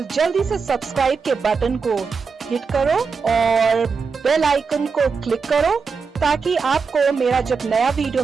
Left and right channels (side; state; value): left; quieter; 5.2 dB